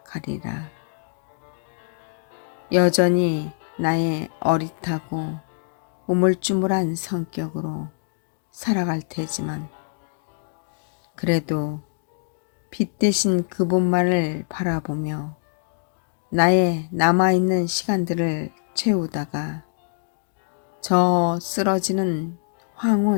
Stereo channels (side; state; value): right; silent; digital silence